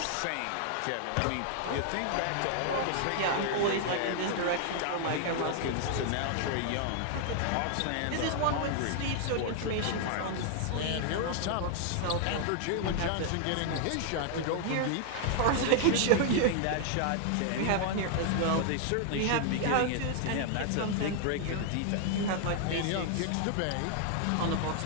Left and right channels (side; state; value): both; different; correlation 0.00